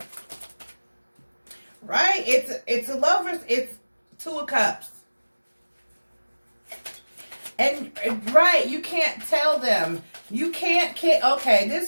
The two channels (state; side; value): inverted; both; correlation -1.00